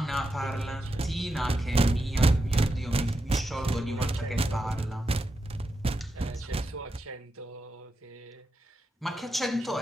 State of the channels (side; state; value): both; normal; correlation 0.87